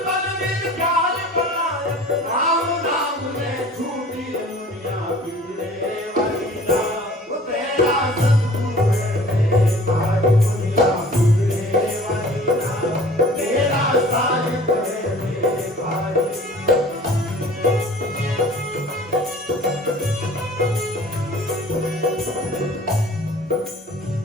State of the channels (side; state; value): both; normal; correlation 0.48